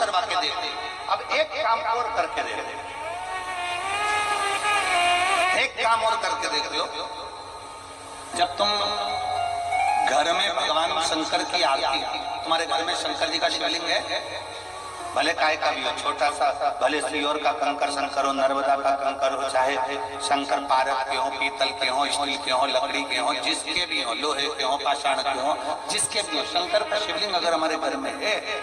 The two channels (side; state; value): both; identical; correlation 1.00